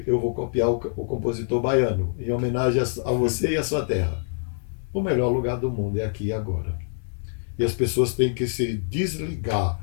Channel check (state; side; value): silent; right; digital silence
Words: eu vou copiar o compositor baiano, em homenagem a você e a sua terra. O melhor lugar do mundo é aqui e agora. E as pessoas têm que se desligar,